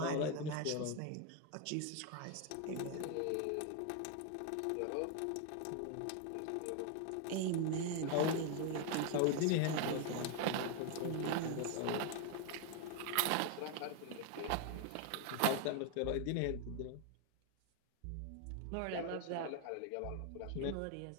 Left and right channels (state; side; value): different; both; correlation 0.01